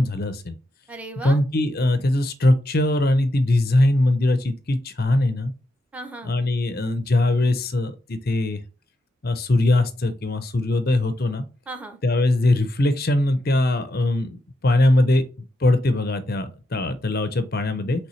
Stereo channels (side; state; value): both; normal; correlation 0.85